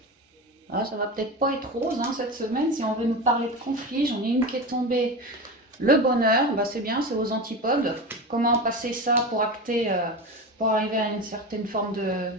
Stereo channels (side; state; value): both; normal; correlation 0.24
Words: Ah, ça va peut-être pas être rose cette semaine. Si on veut nous parler de conflit, j'en ai une qui est tombée. Le bonheur, bah c'est bien, c'est aux antipodes. Comment passer ça pour acter, pour arriver à une certaine forme